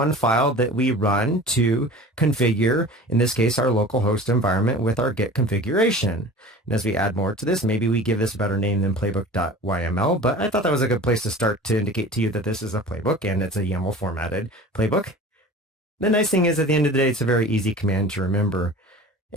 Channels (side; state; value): both; normal; correlation 0.40